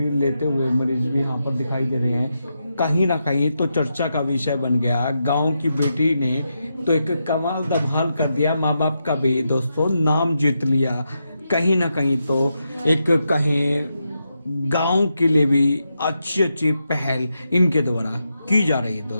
लेते हुए मरीज भी यहाँ पर दिखाई दे रहे हैं। कहीं ना कहीं तो चर्चा का विषय बन गया। गांव की बेटी ने तो एक कमाल धमाल कर दिया, माँ बाप का भी दोस्तों नाम जीत लिया। कहीं ना कहीं तो एक कहीं गांव के लिए भी अच्छी पहल इनके द्वारा की जा रही है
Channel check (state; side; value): inverted; both; correlation -0.85